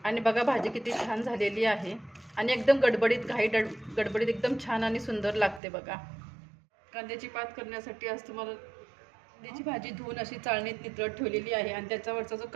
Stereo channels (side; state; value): left; drops out; at 5.6 s